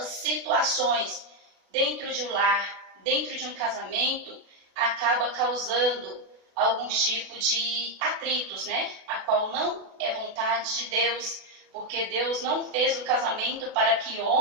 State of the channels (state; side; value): late; left; 36 ms